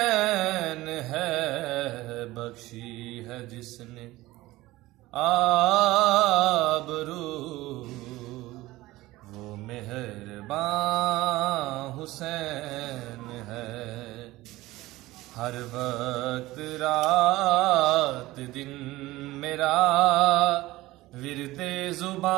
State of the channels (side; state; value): left; quieter; 18.2 dB